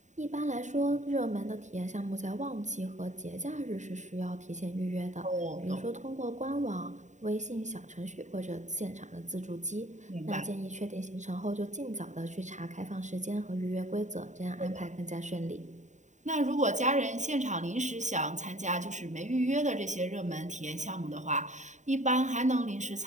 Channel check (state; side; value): late; left; 0.35 ms